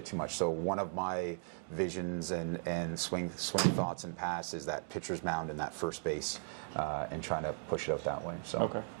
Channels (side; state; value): left; silent; digital silence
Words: too much. So one of my visions and swing thoughts and pass is that pitcher's mound in that first base, and trying to push it out that way. So